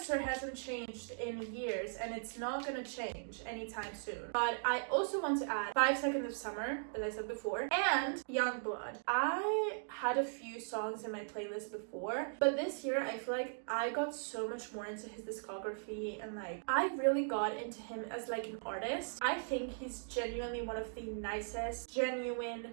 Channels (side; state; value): left; silent; digital silence